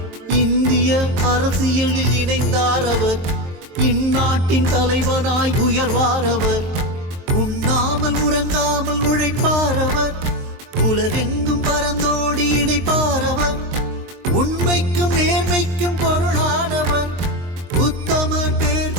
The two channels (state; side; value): late; left; 23 ms